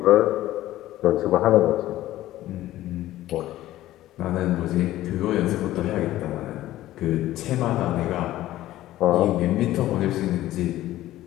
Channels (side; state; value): right; quieter; 14.9 dB